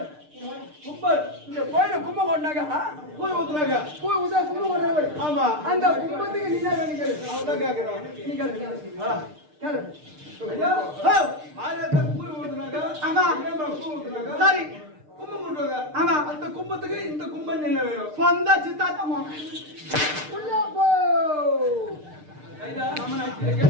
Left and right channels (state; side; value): late; left; 6.6 ms